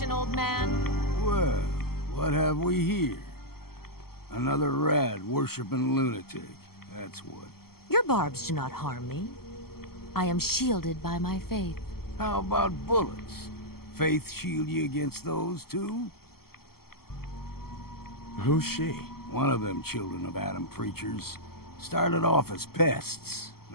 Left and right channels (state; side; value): late; right; 0.95 ms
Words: old man? Well, what have we here? Another rad-worshipping lunatic, that's what. Your barbs do not harm me. I am shielded by my faith. How about bullets? Faith shield you against those, too? Who's she? One of them children of Adam preachers. Started off as pests.